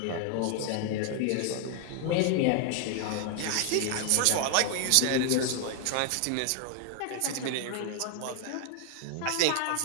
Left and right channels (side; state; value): both; different; correlation 0.00